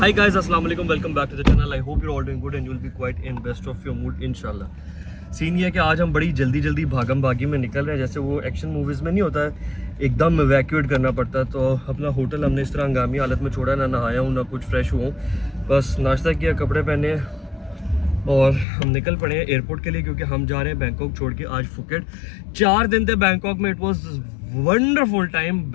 Hi guys, assalamu alaikum, welcome back to the channel. I hope you're all doing good and you'll be quite in best of your mood inshallah. Scene ये है कि आज हम बड़ी जल्दी भागम भागी में निकल रहे हैं, जैसे वो एक्शन मूवीज़ में नहीं होता है, एकदम इवैक्यूएट करना पड़ता है। तो अपना होटल हमने इस तरह हंगामी हालत में छोड़ा, ना नहाया हूँ ना कुछ फ्रेश हुआ हूँ, बस नाश्ता किया, कपड़े पहने और हम निकल पड़े हैं एयरपोर्ट के लिए, क्योंकि हम जा रहे हैं बैंकॉक छोड़ के आज फुकेट। 4 दिन थे बैंकॉक में, it was wonderful time.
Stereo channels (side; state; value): right; drops out; at 18.7 s